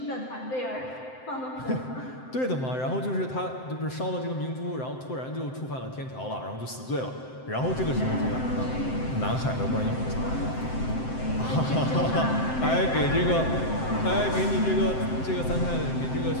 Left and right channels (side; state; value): right; late; 7.7 ms